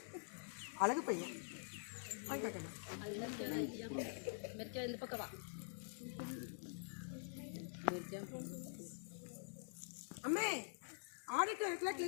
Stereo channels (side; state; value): right; silent; digital silence